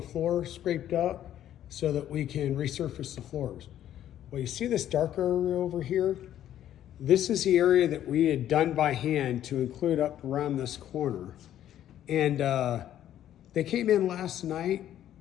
floor scraped up so that we can resurface the floors. Well, you see this dark area over here? This is the area that we had done by hand to include up around this corner. And they came in last night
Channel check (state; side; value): quieter; right; 11.5 dB